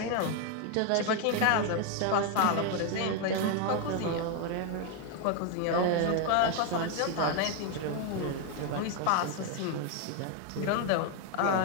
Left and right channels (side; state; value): both; different; correlation 0.01